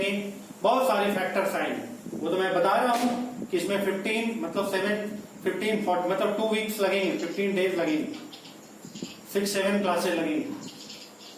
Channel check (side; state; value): both; identical; correlation 1.00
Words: बहुत सारे फैक्टर्स आएंगे, वो तो मैं बता रहा हूं। कि इसमें 15 मतलब 15 40 मतलब 2 वीक्स लगेंगे, 15 डेज लगेंगे, 6-7 क्लासेस लगेंगी।